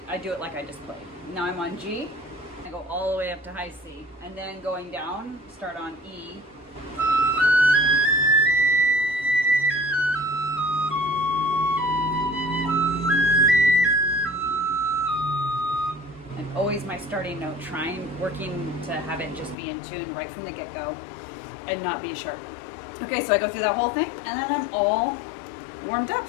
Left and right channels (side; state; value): right; drops out; at 19.6 s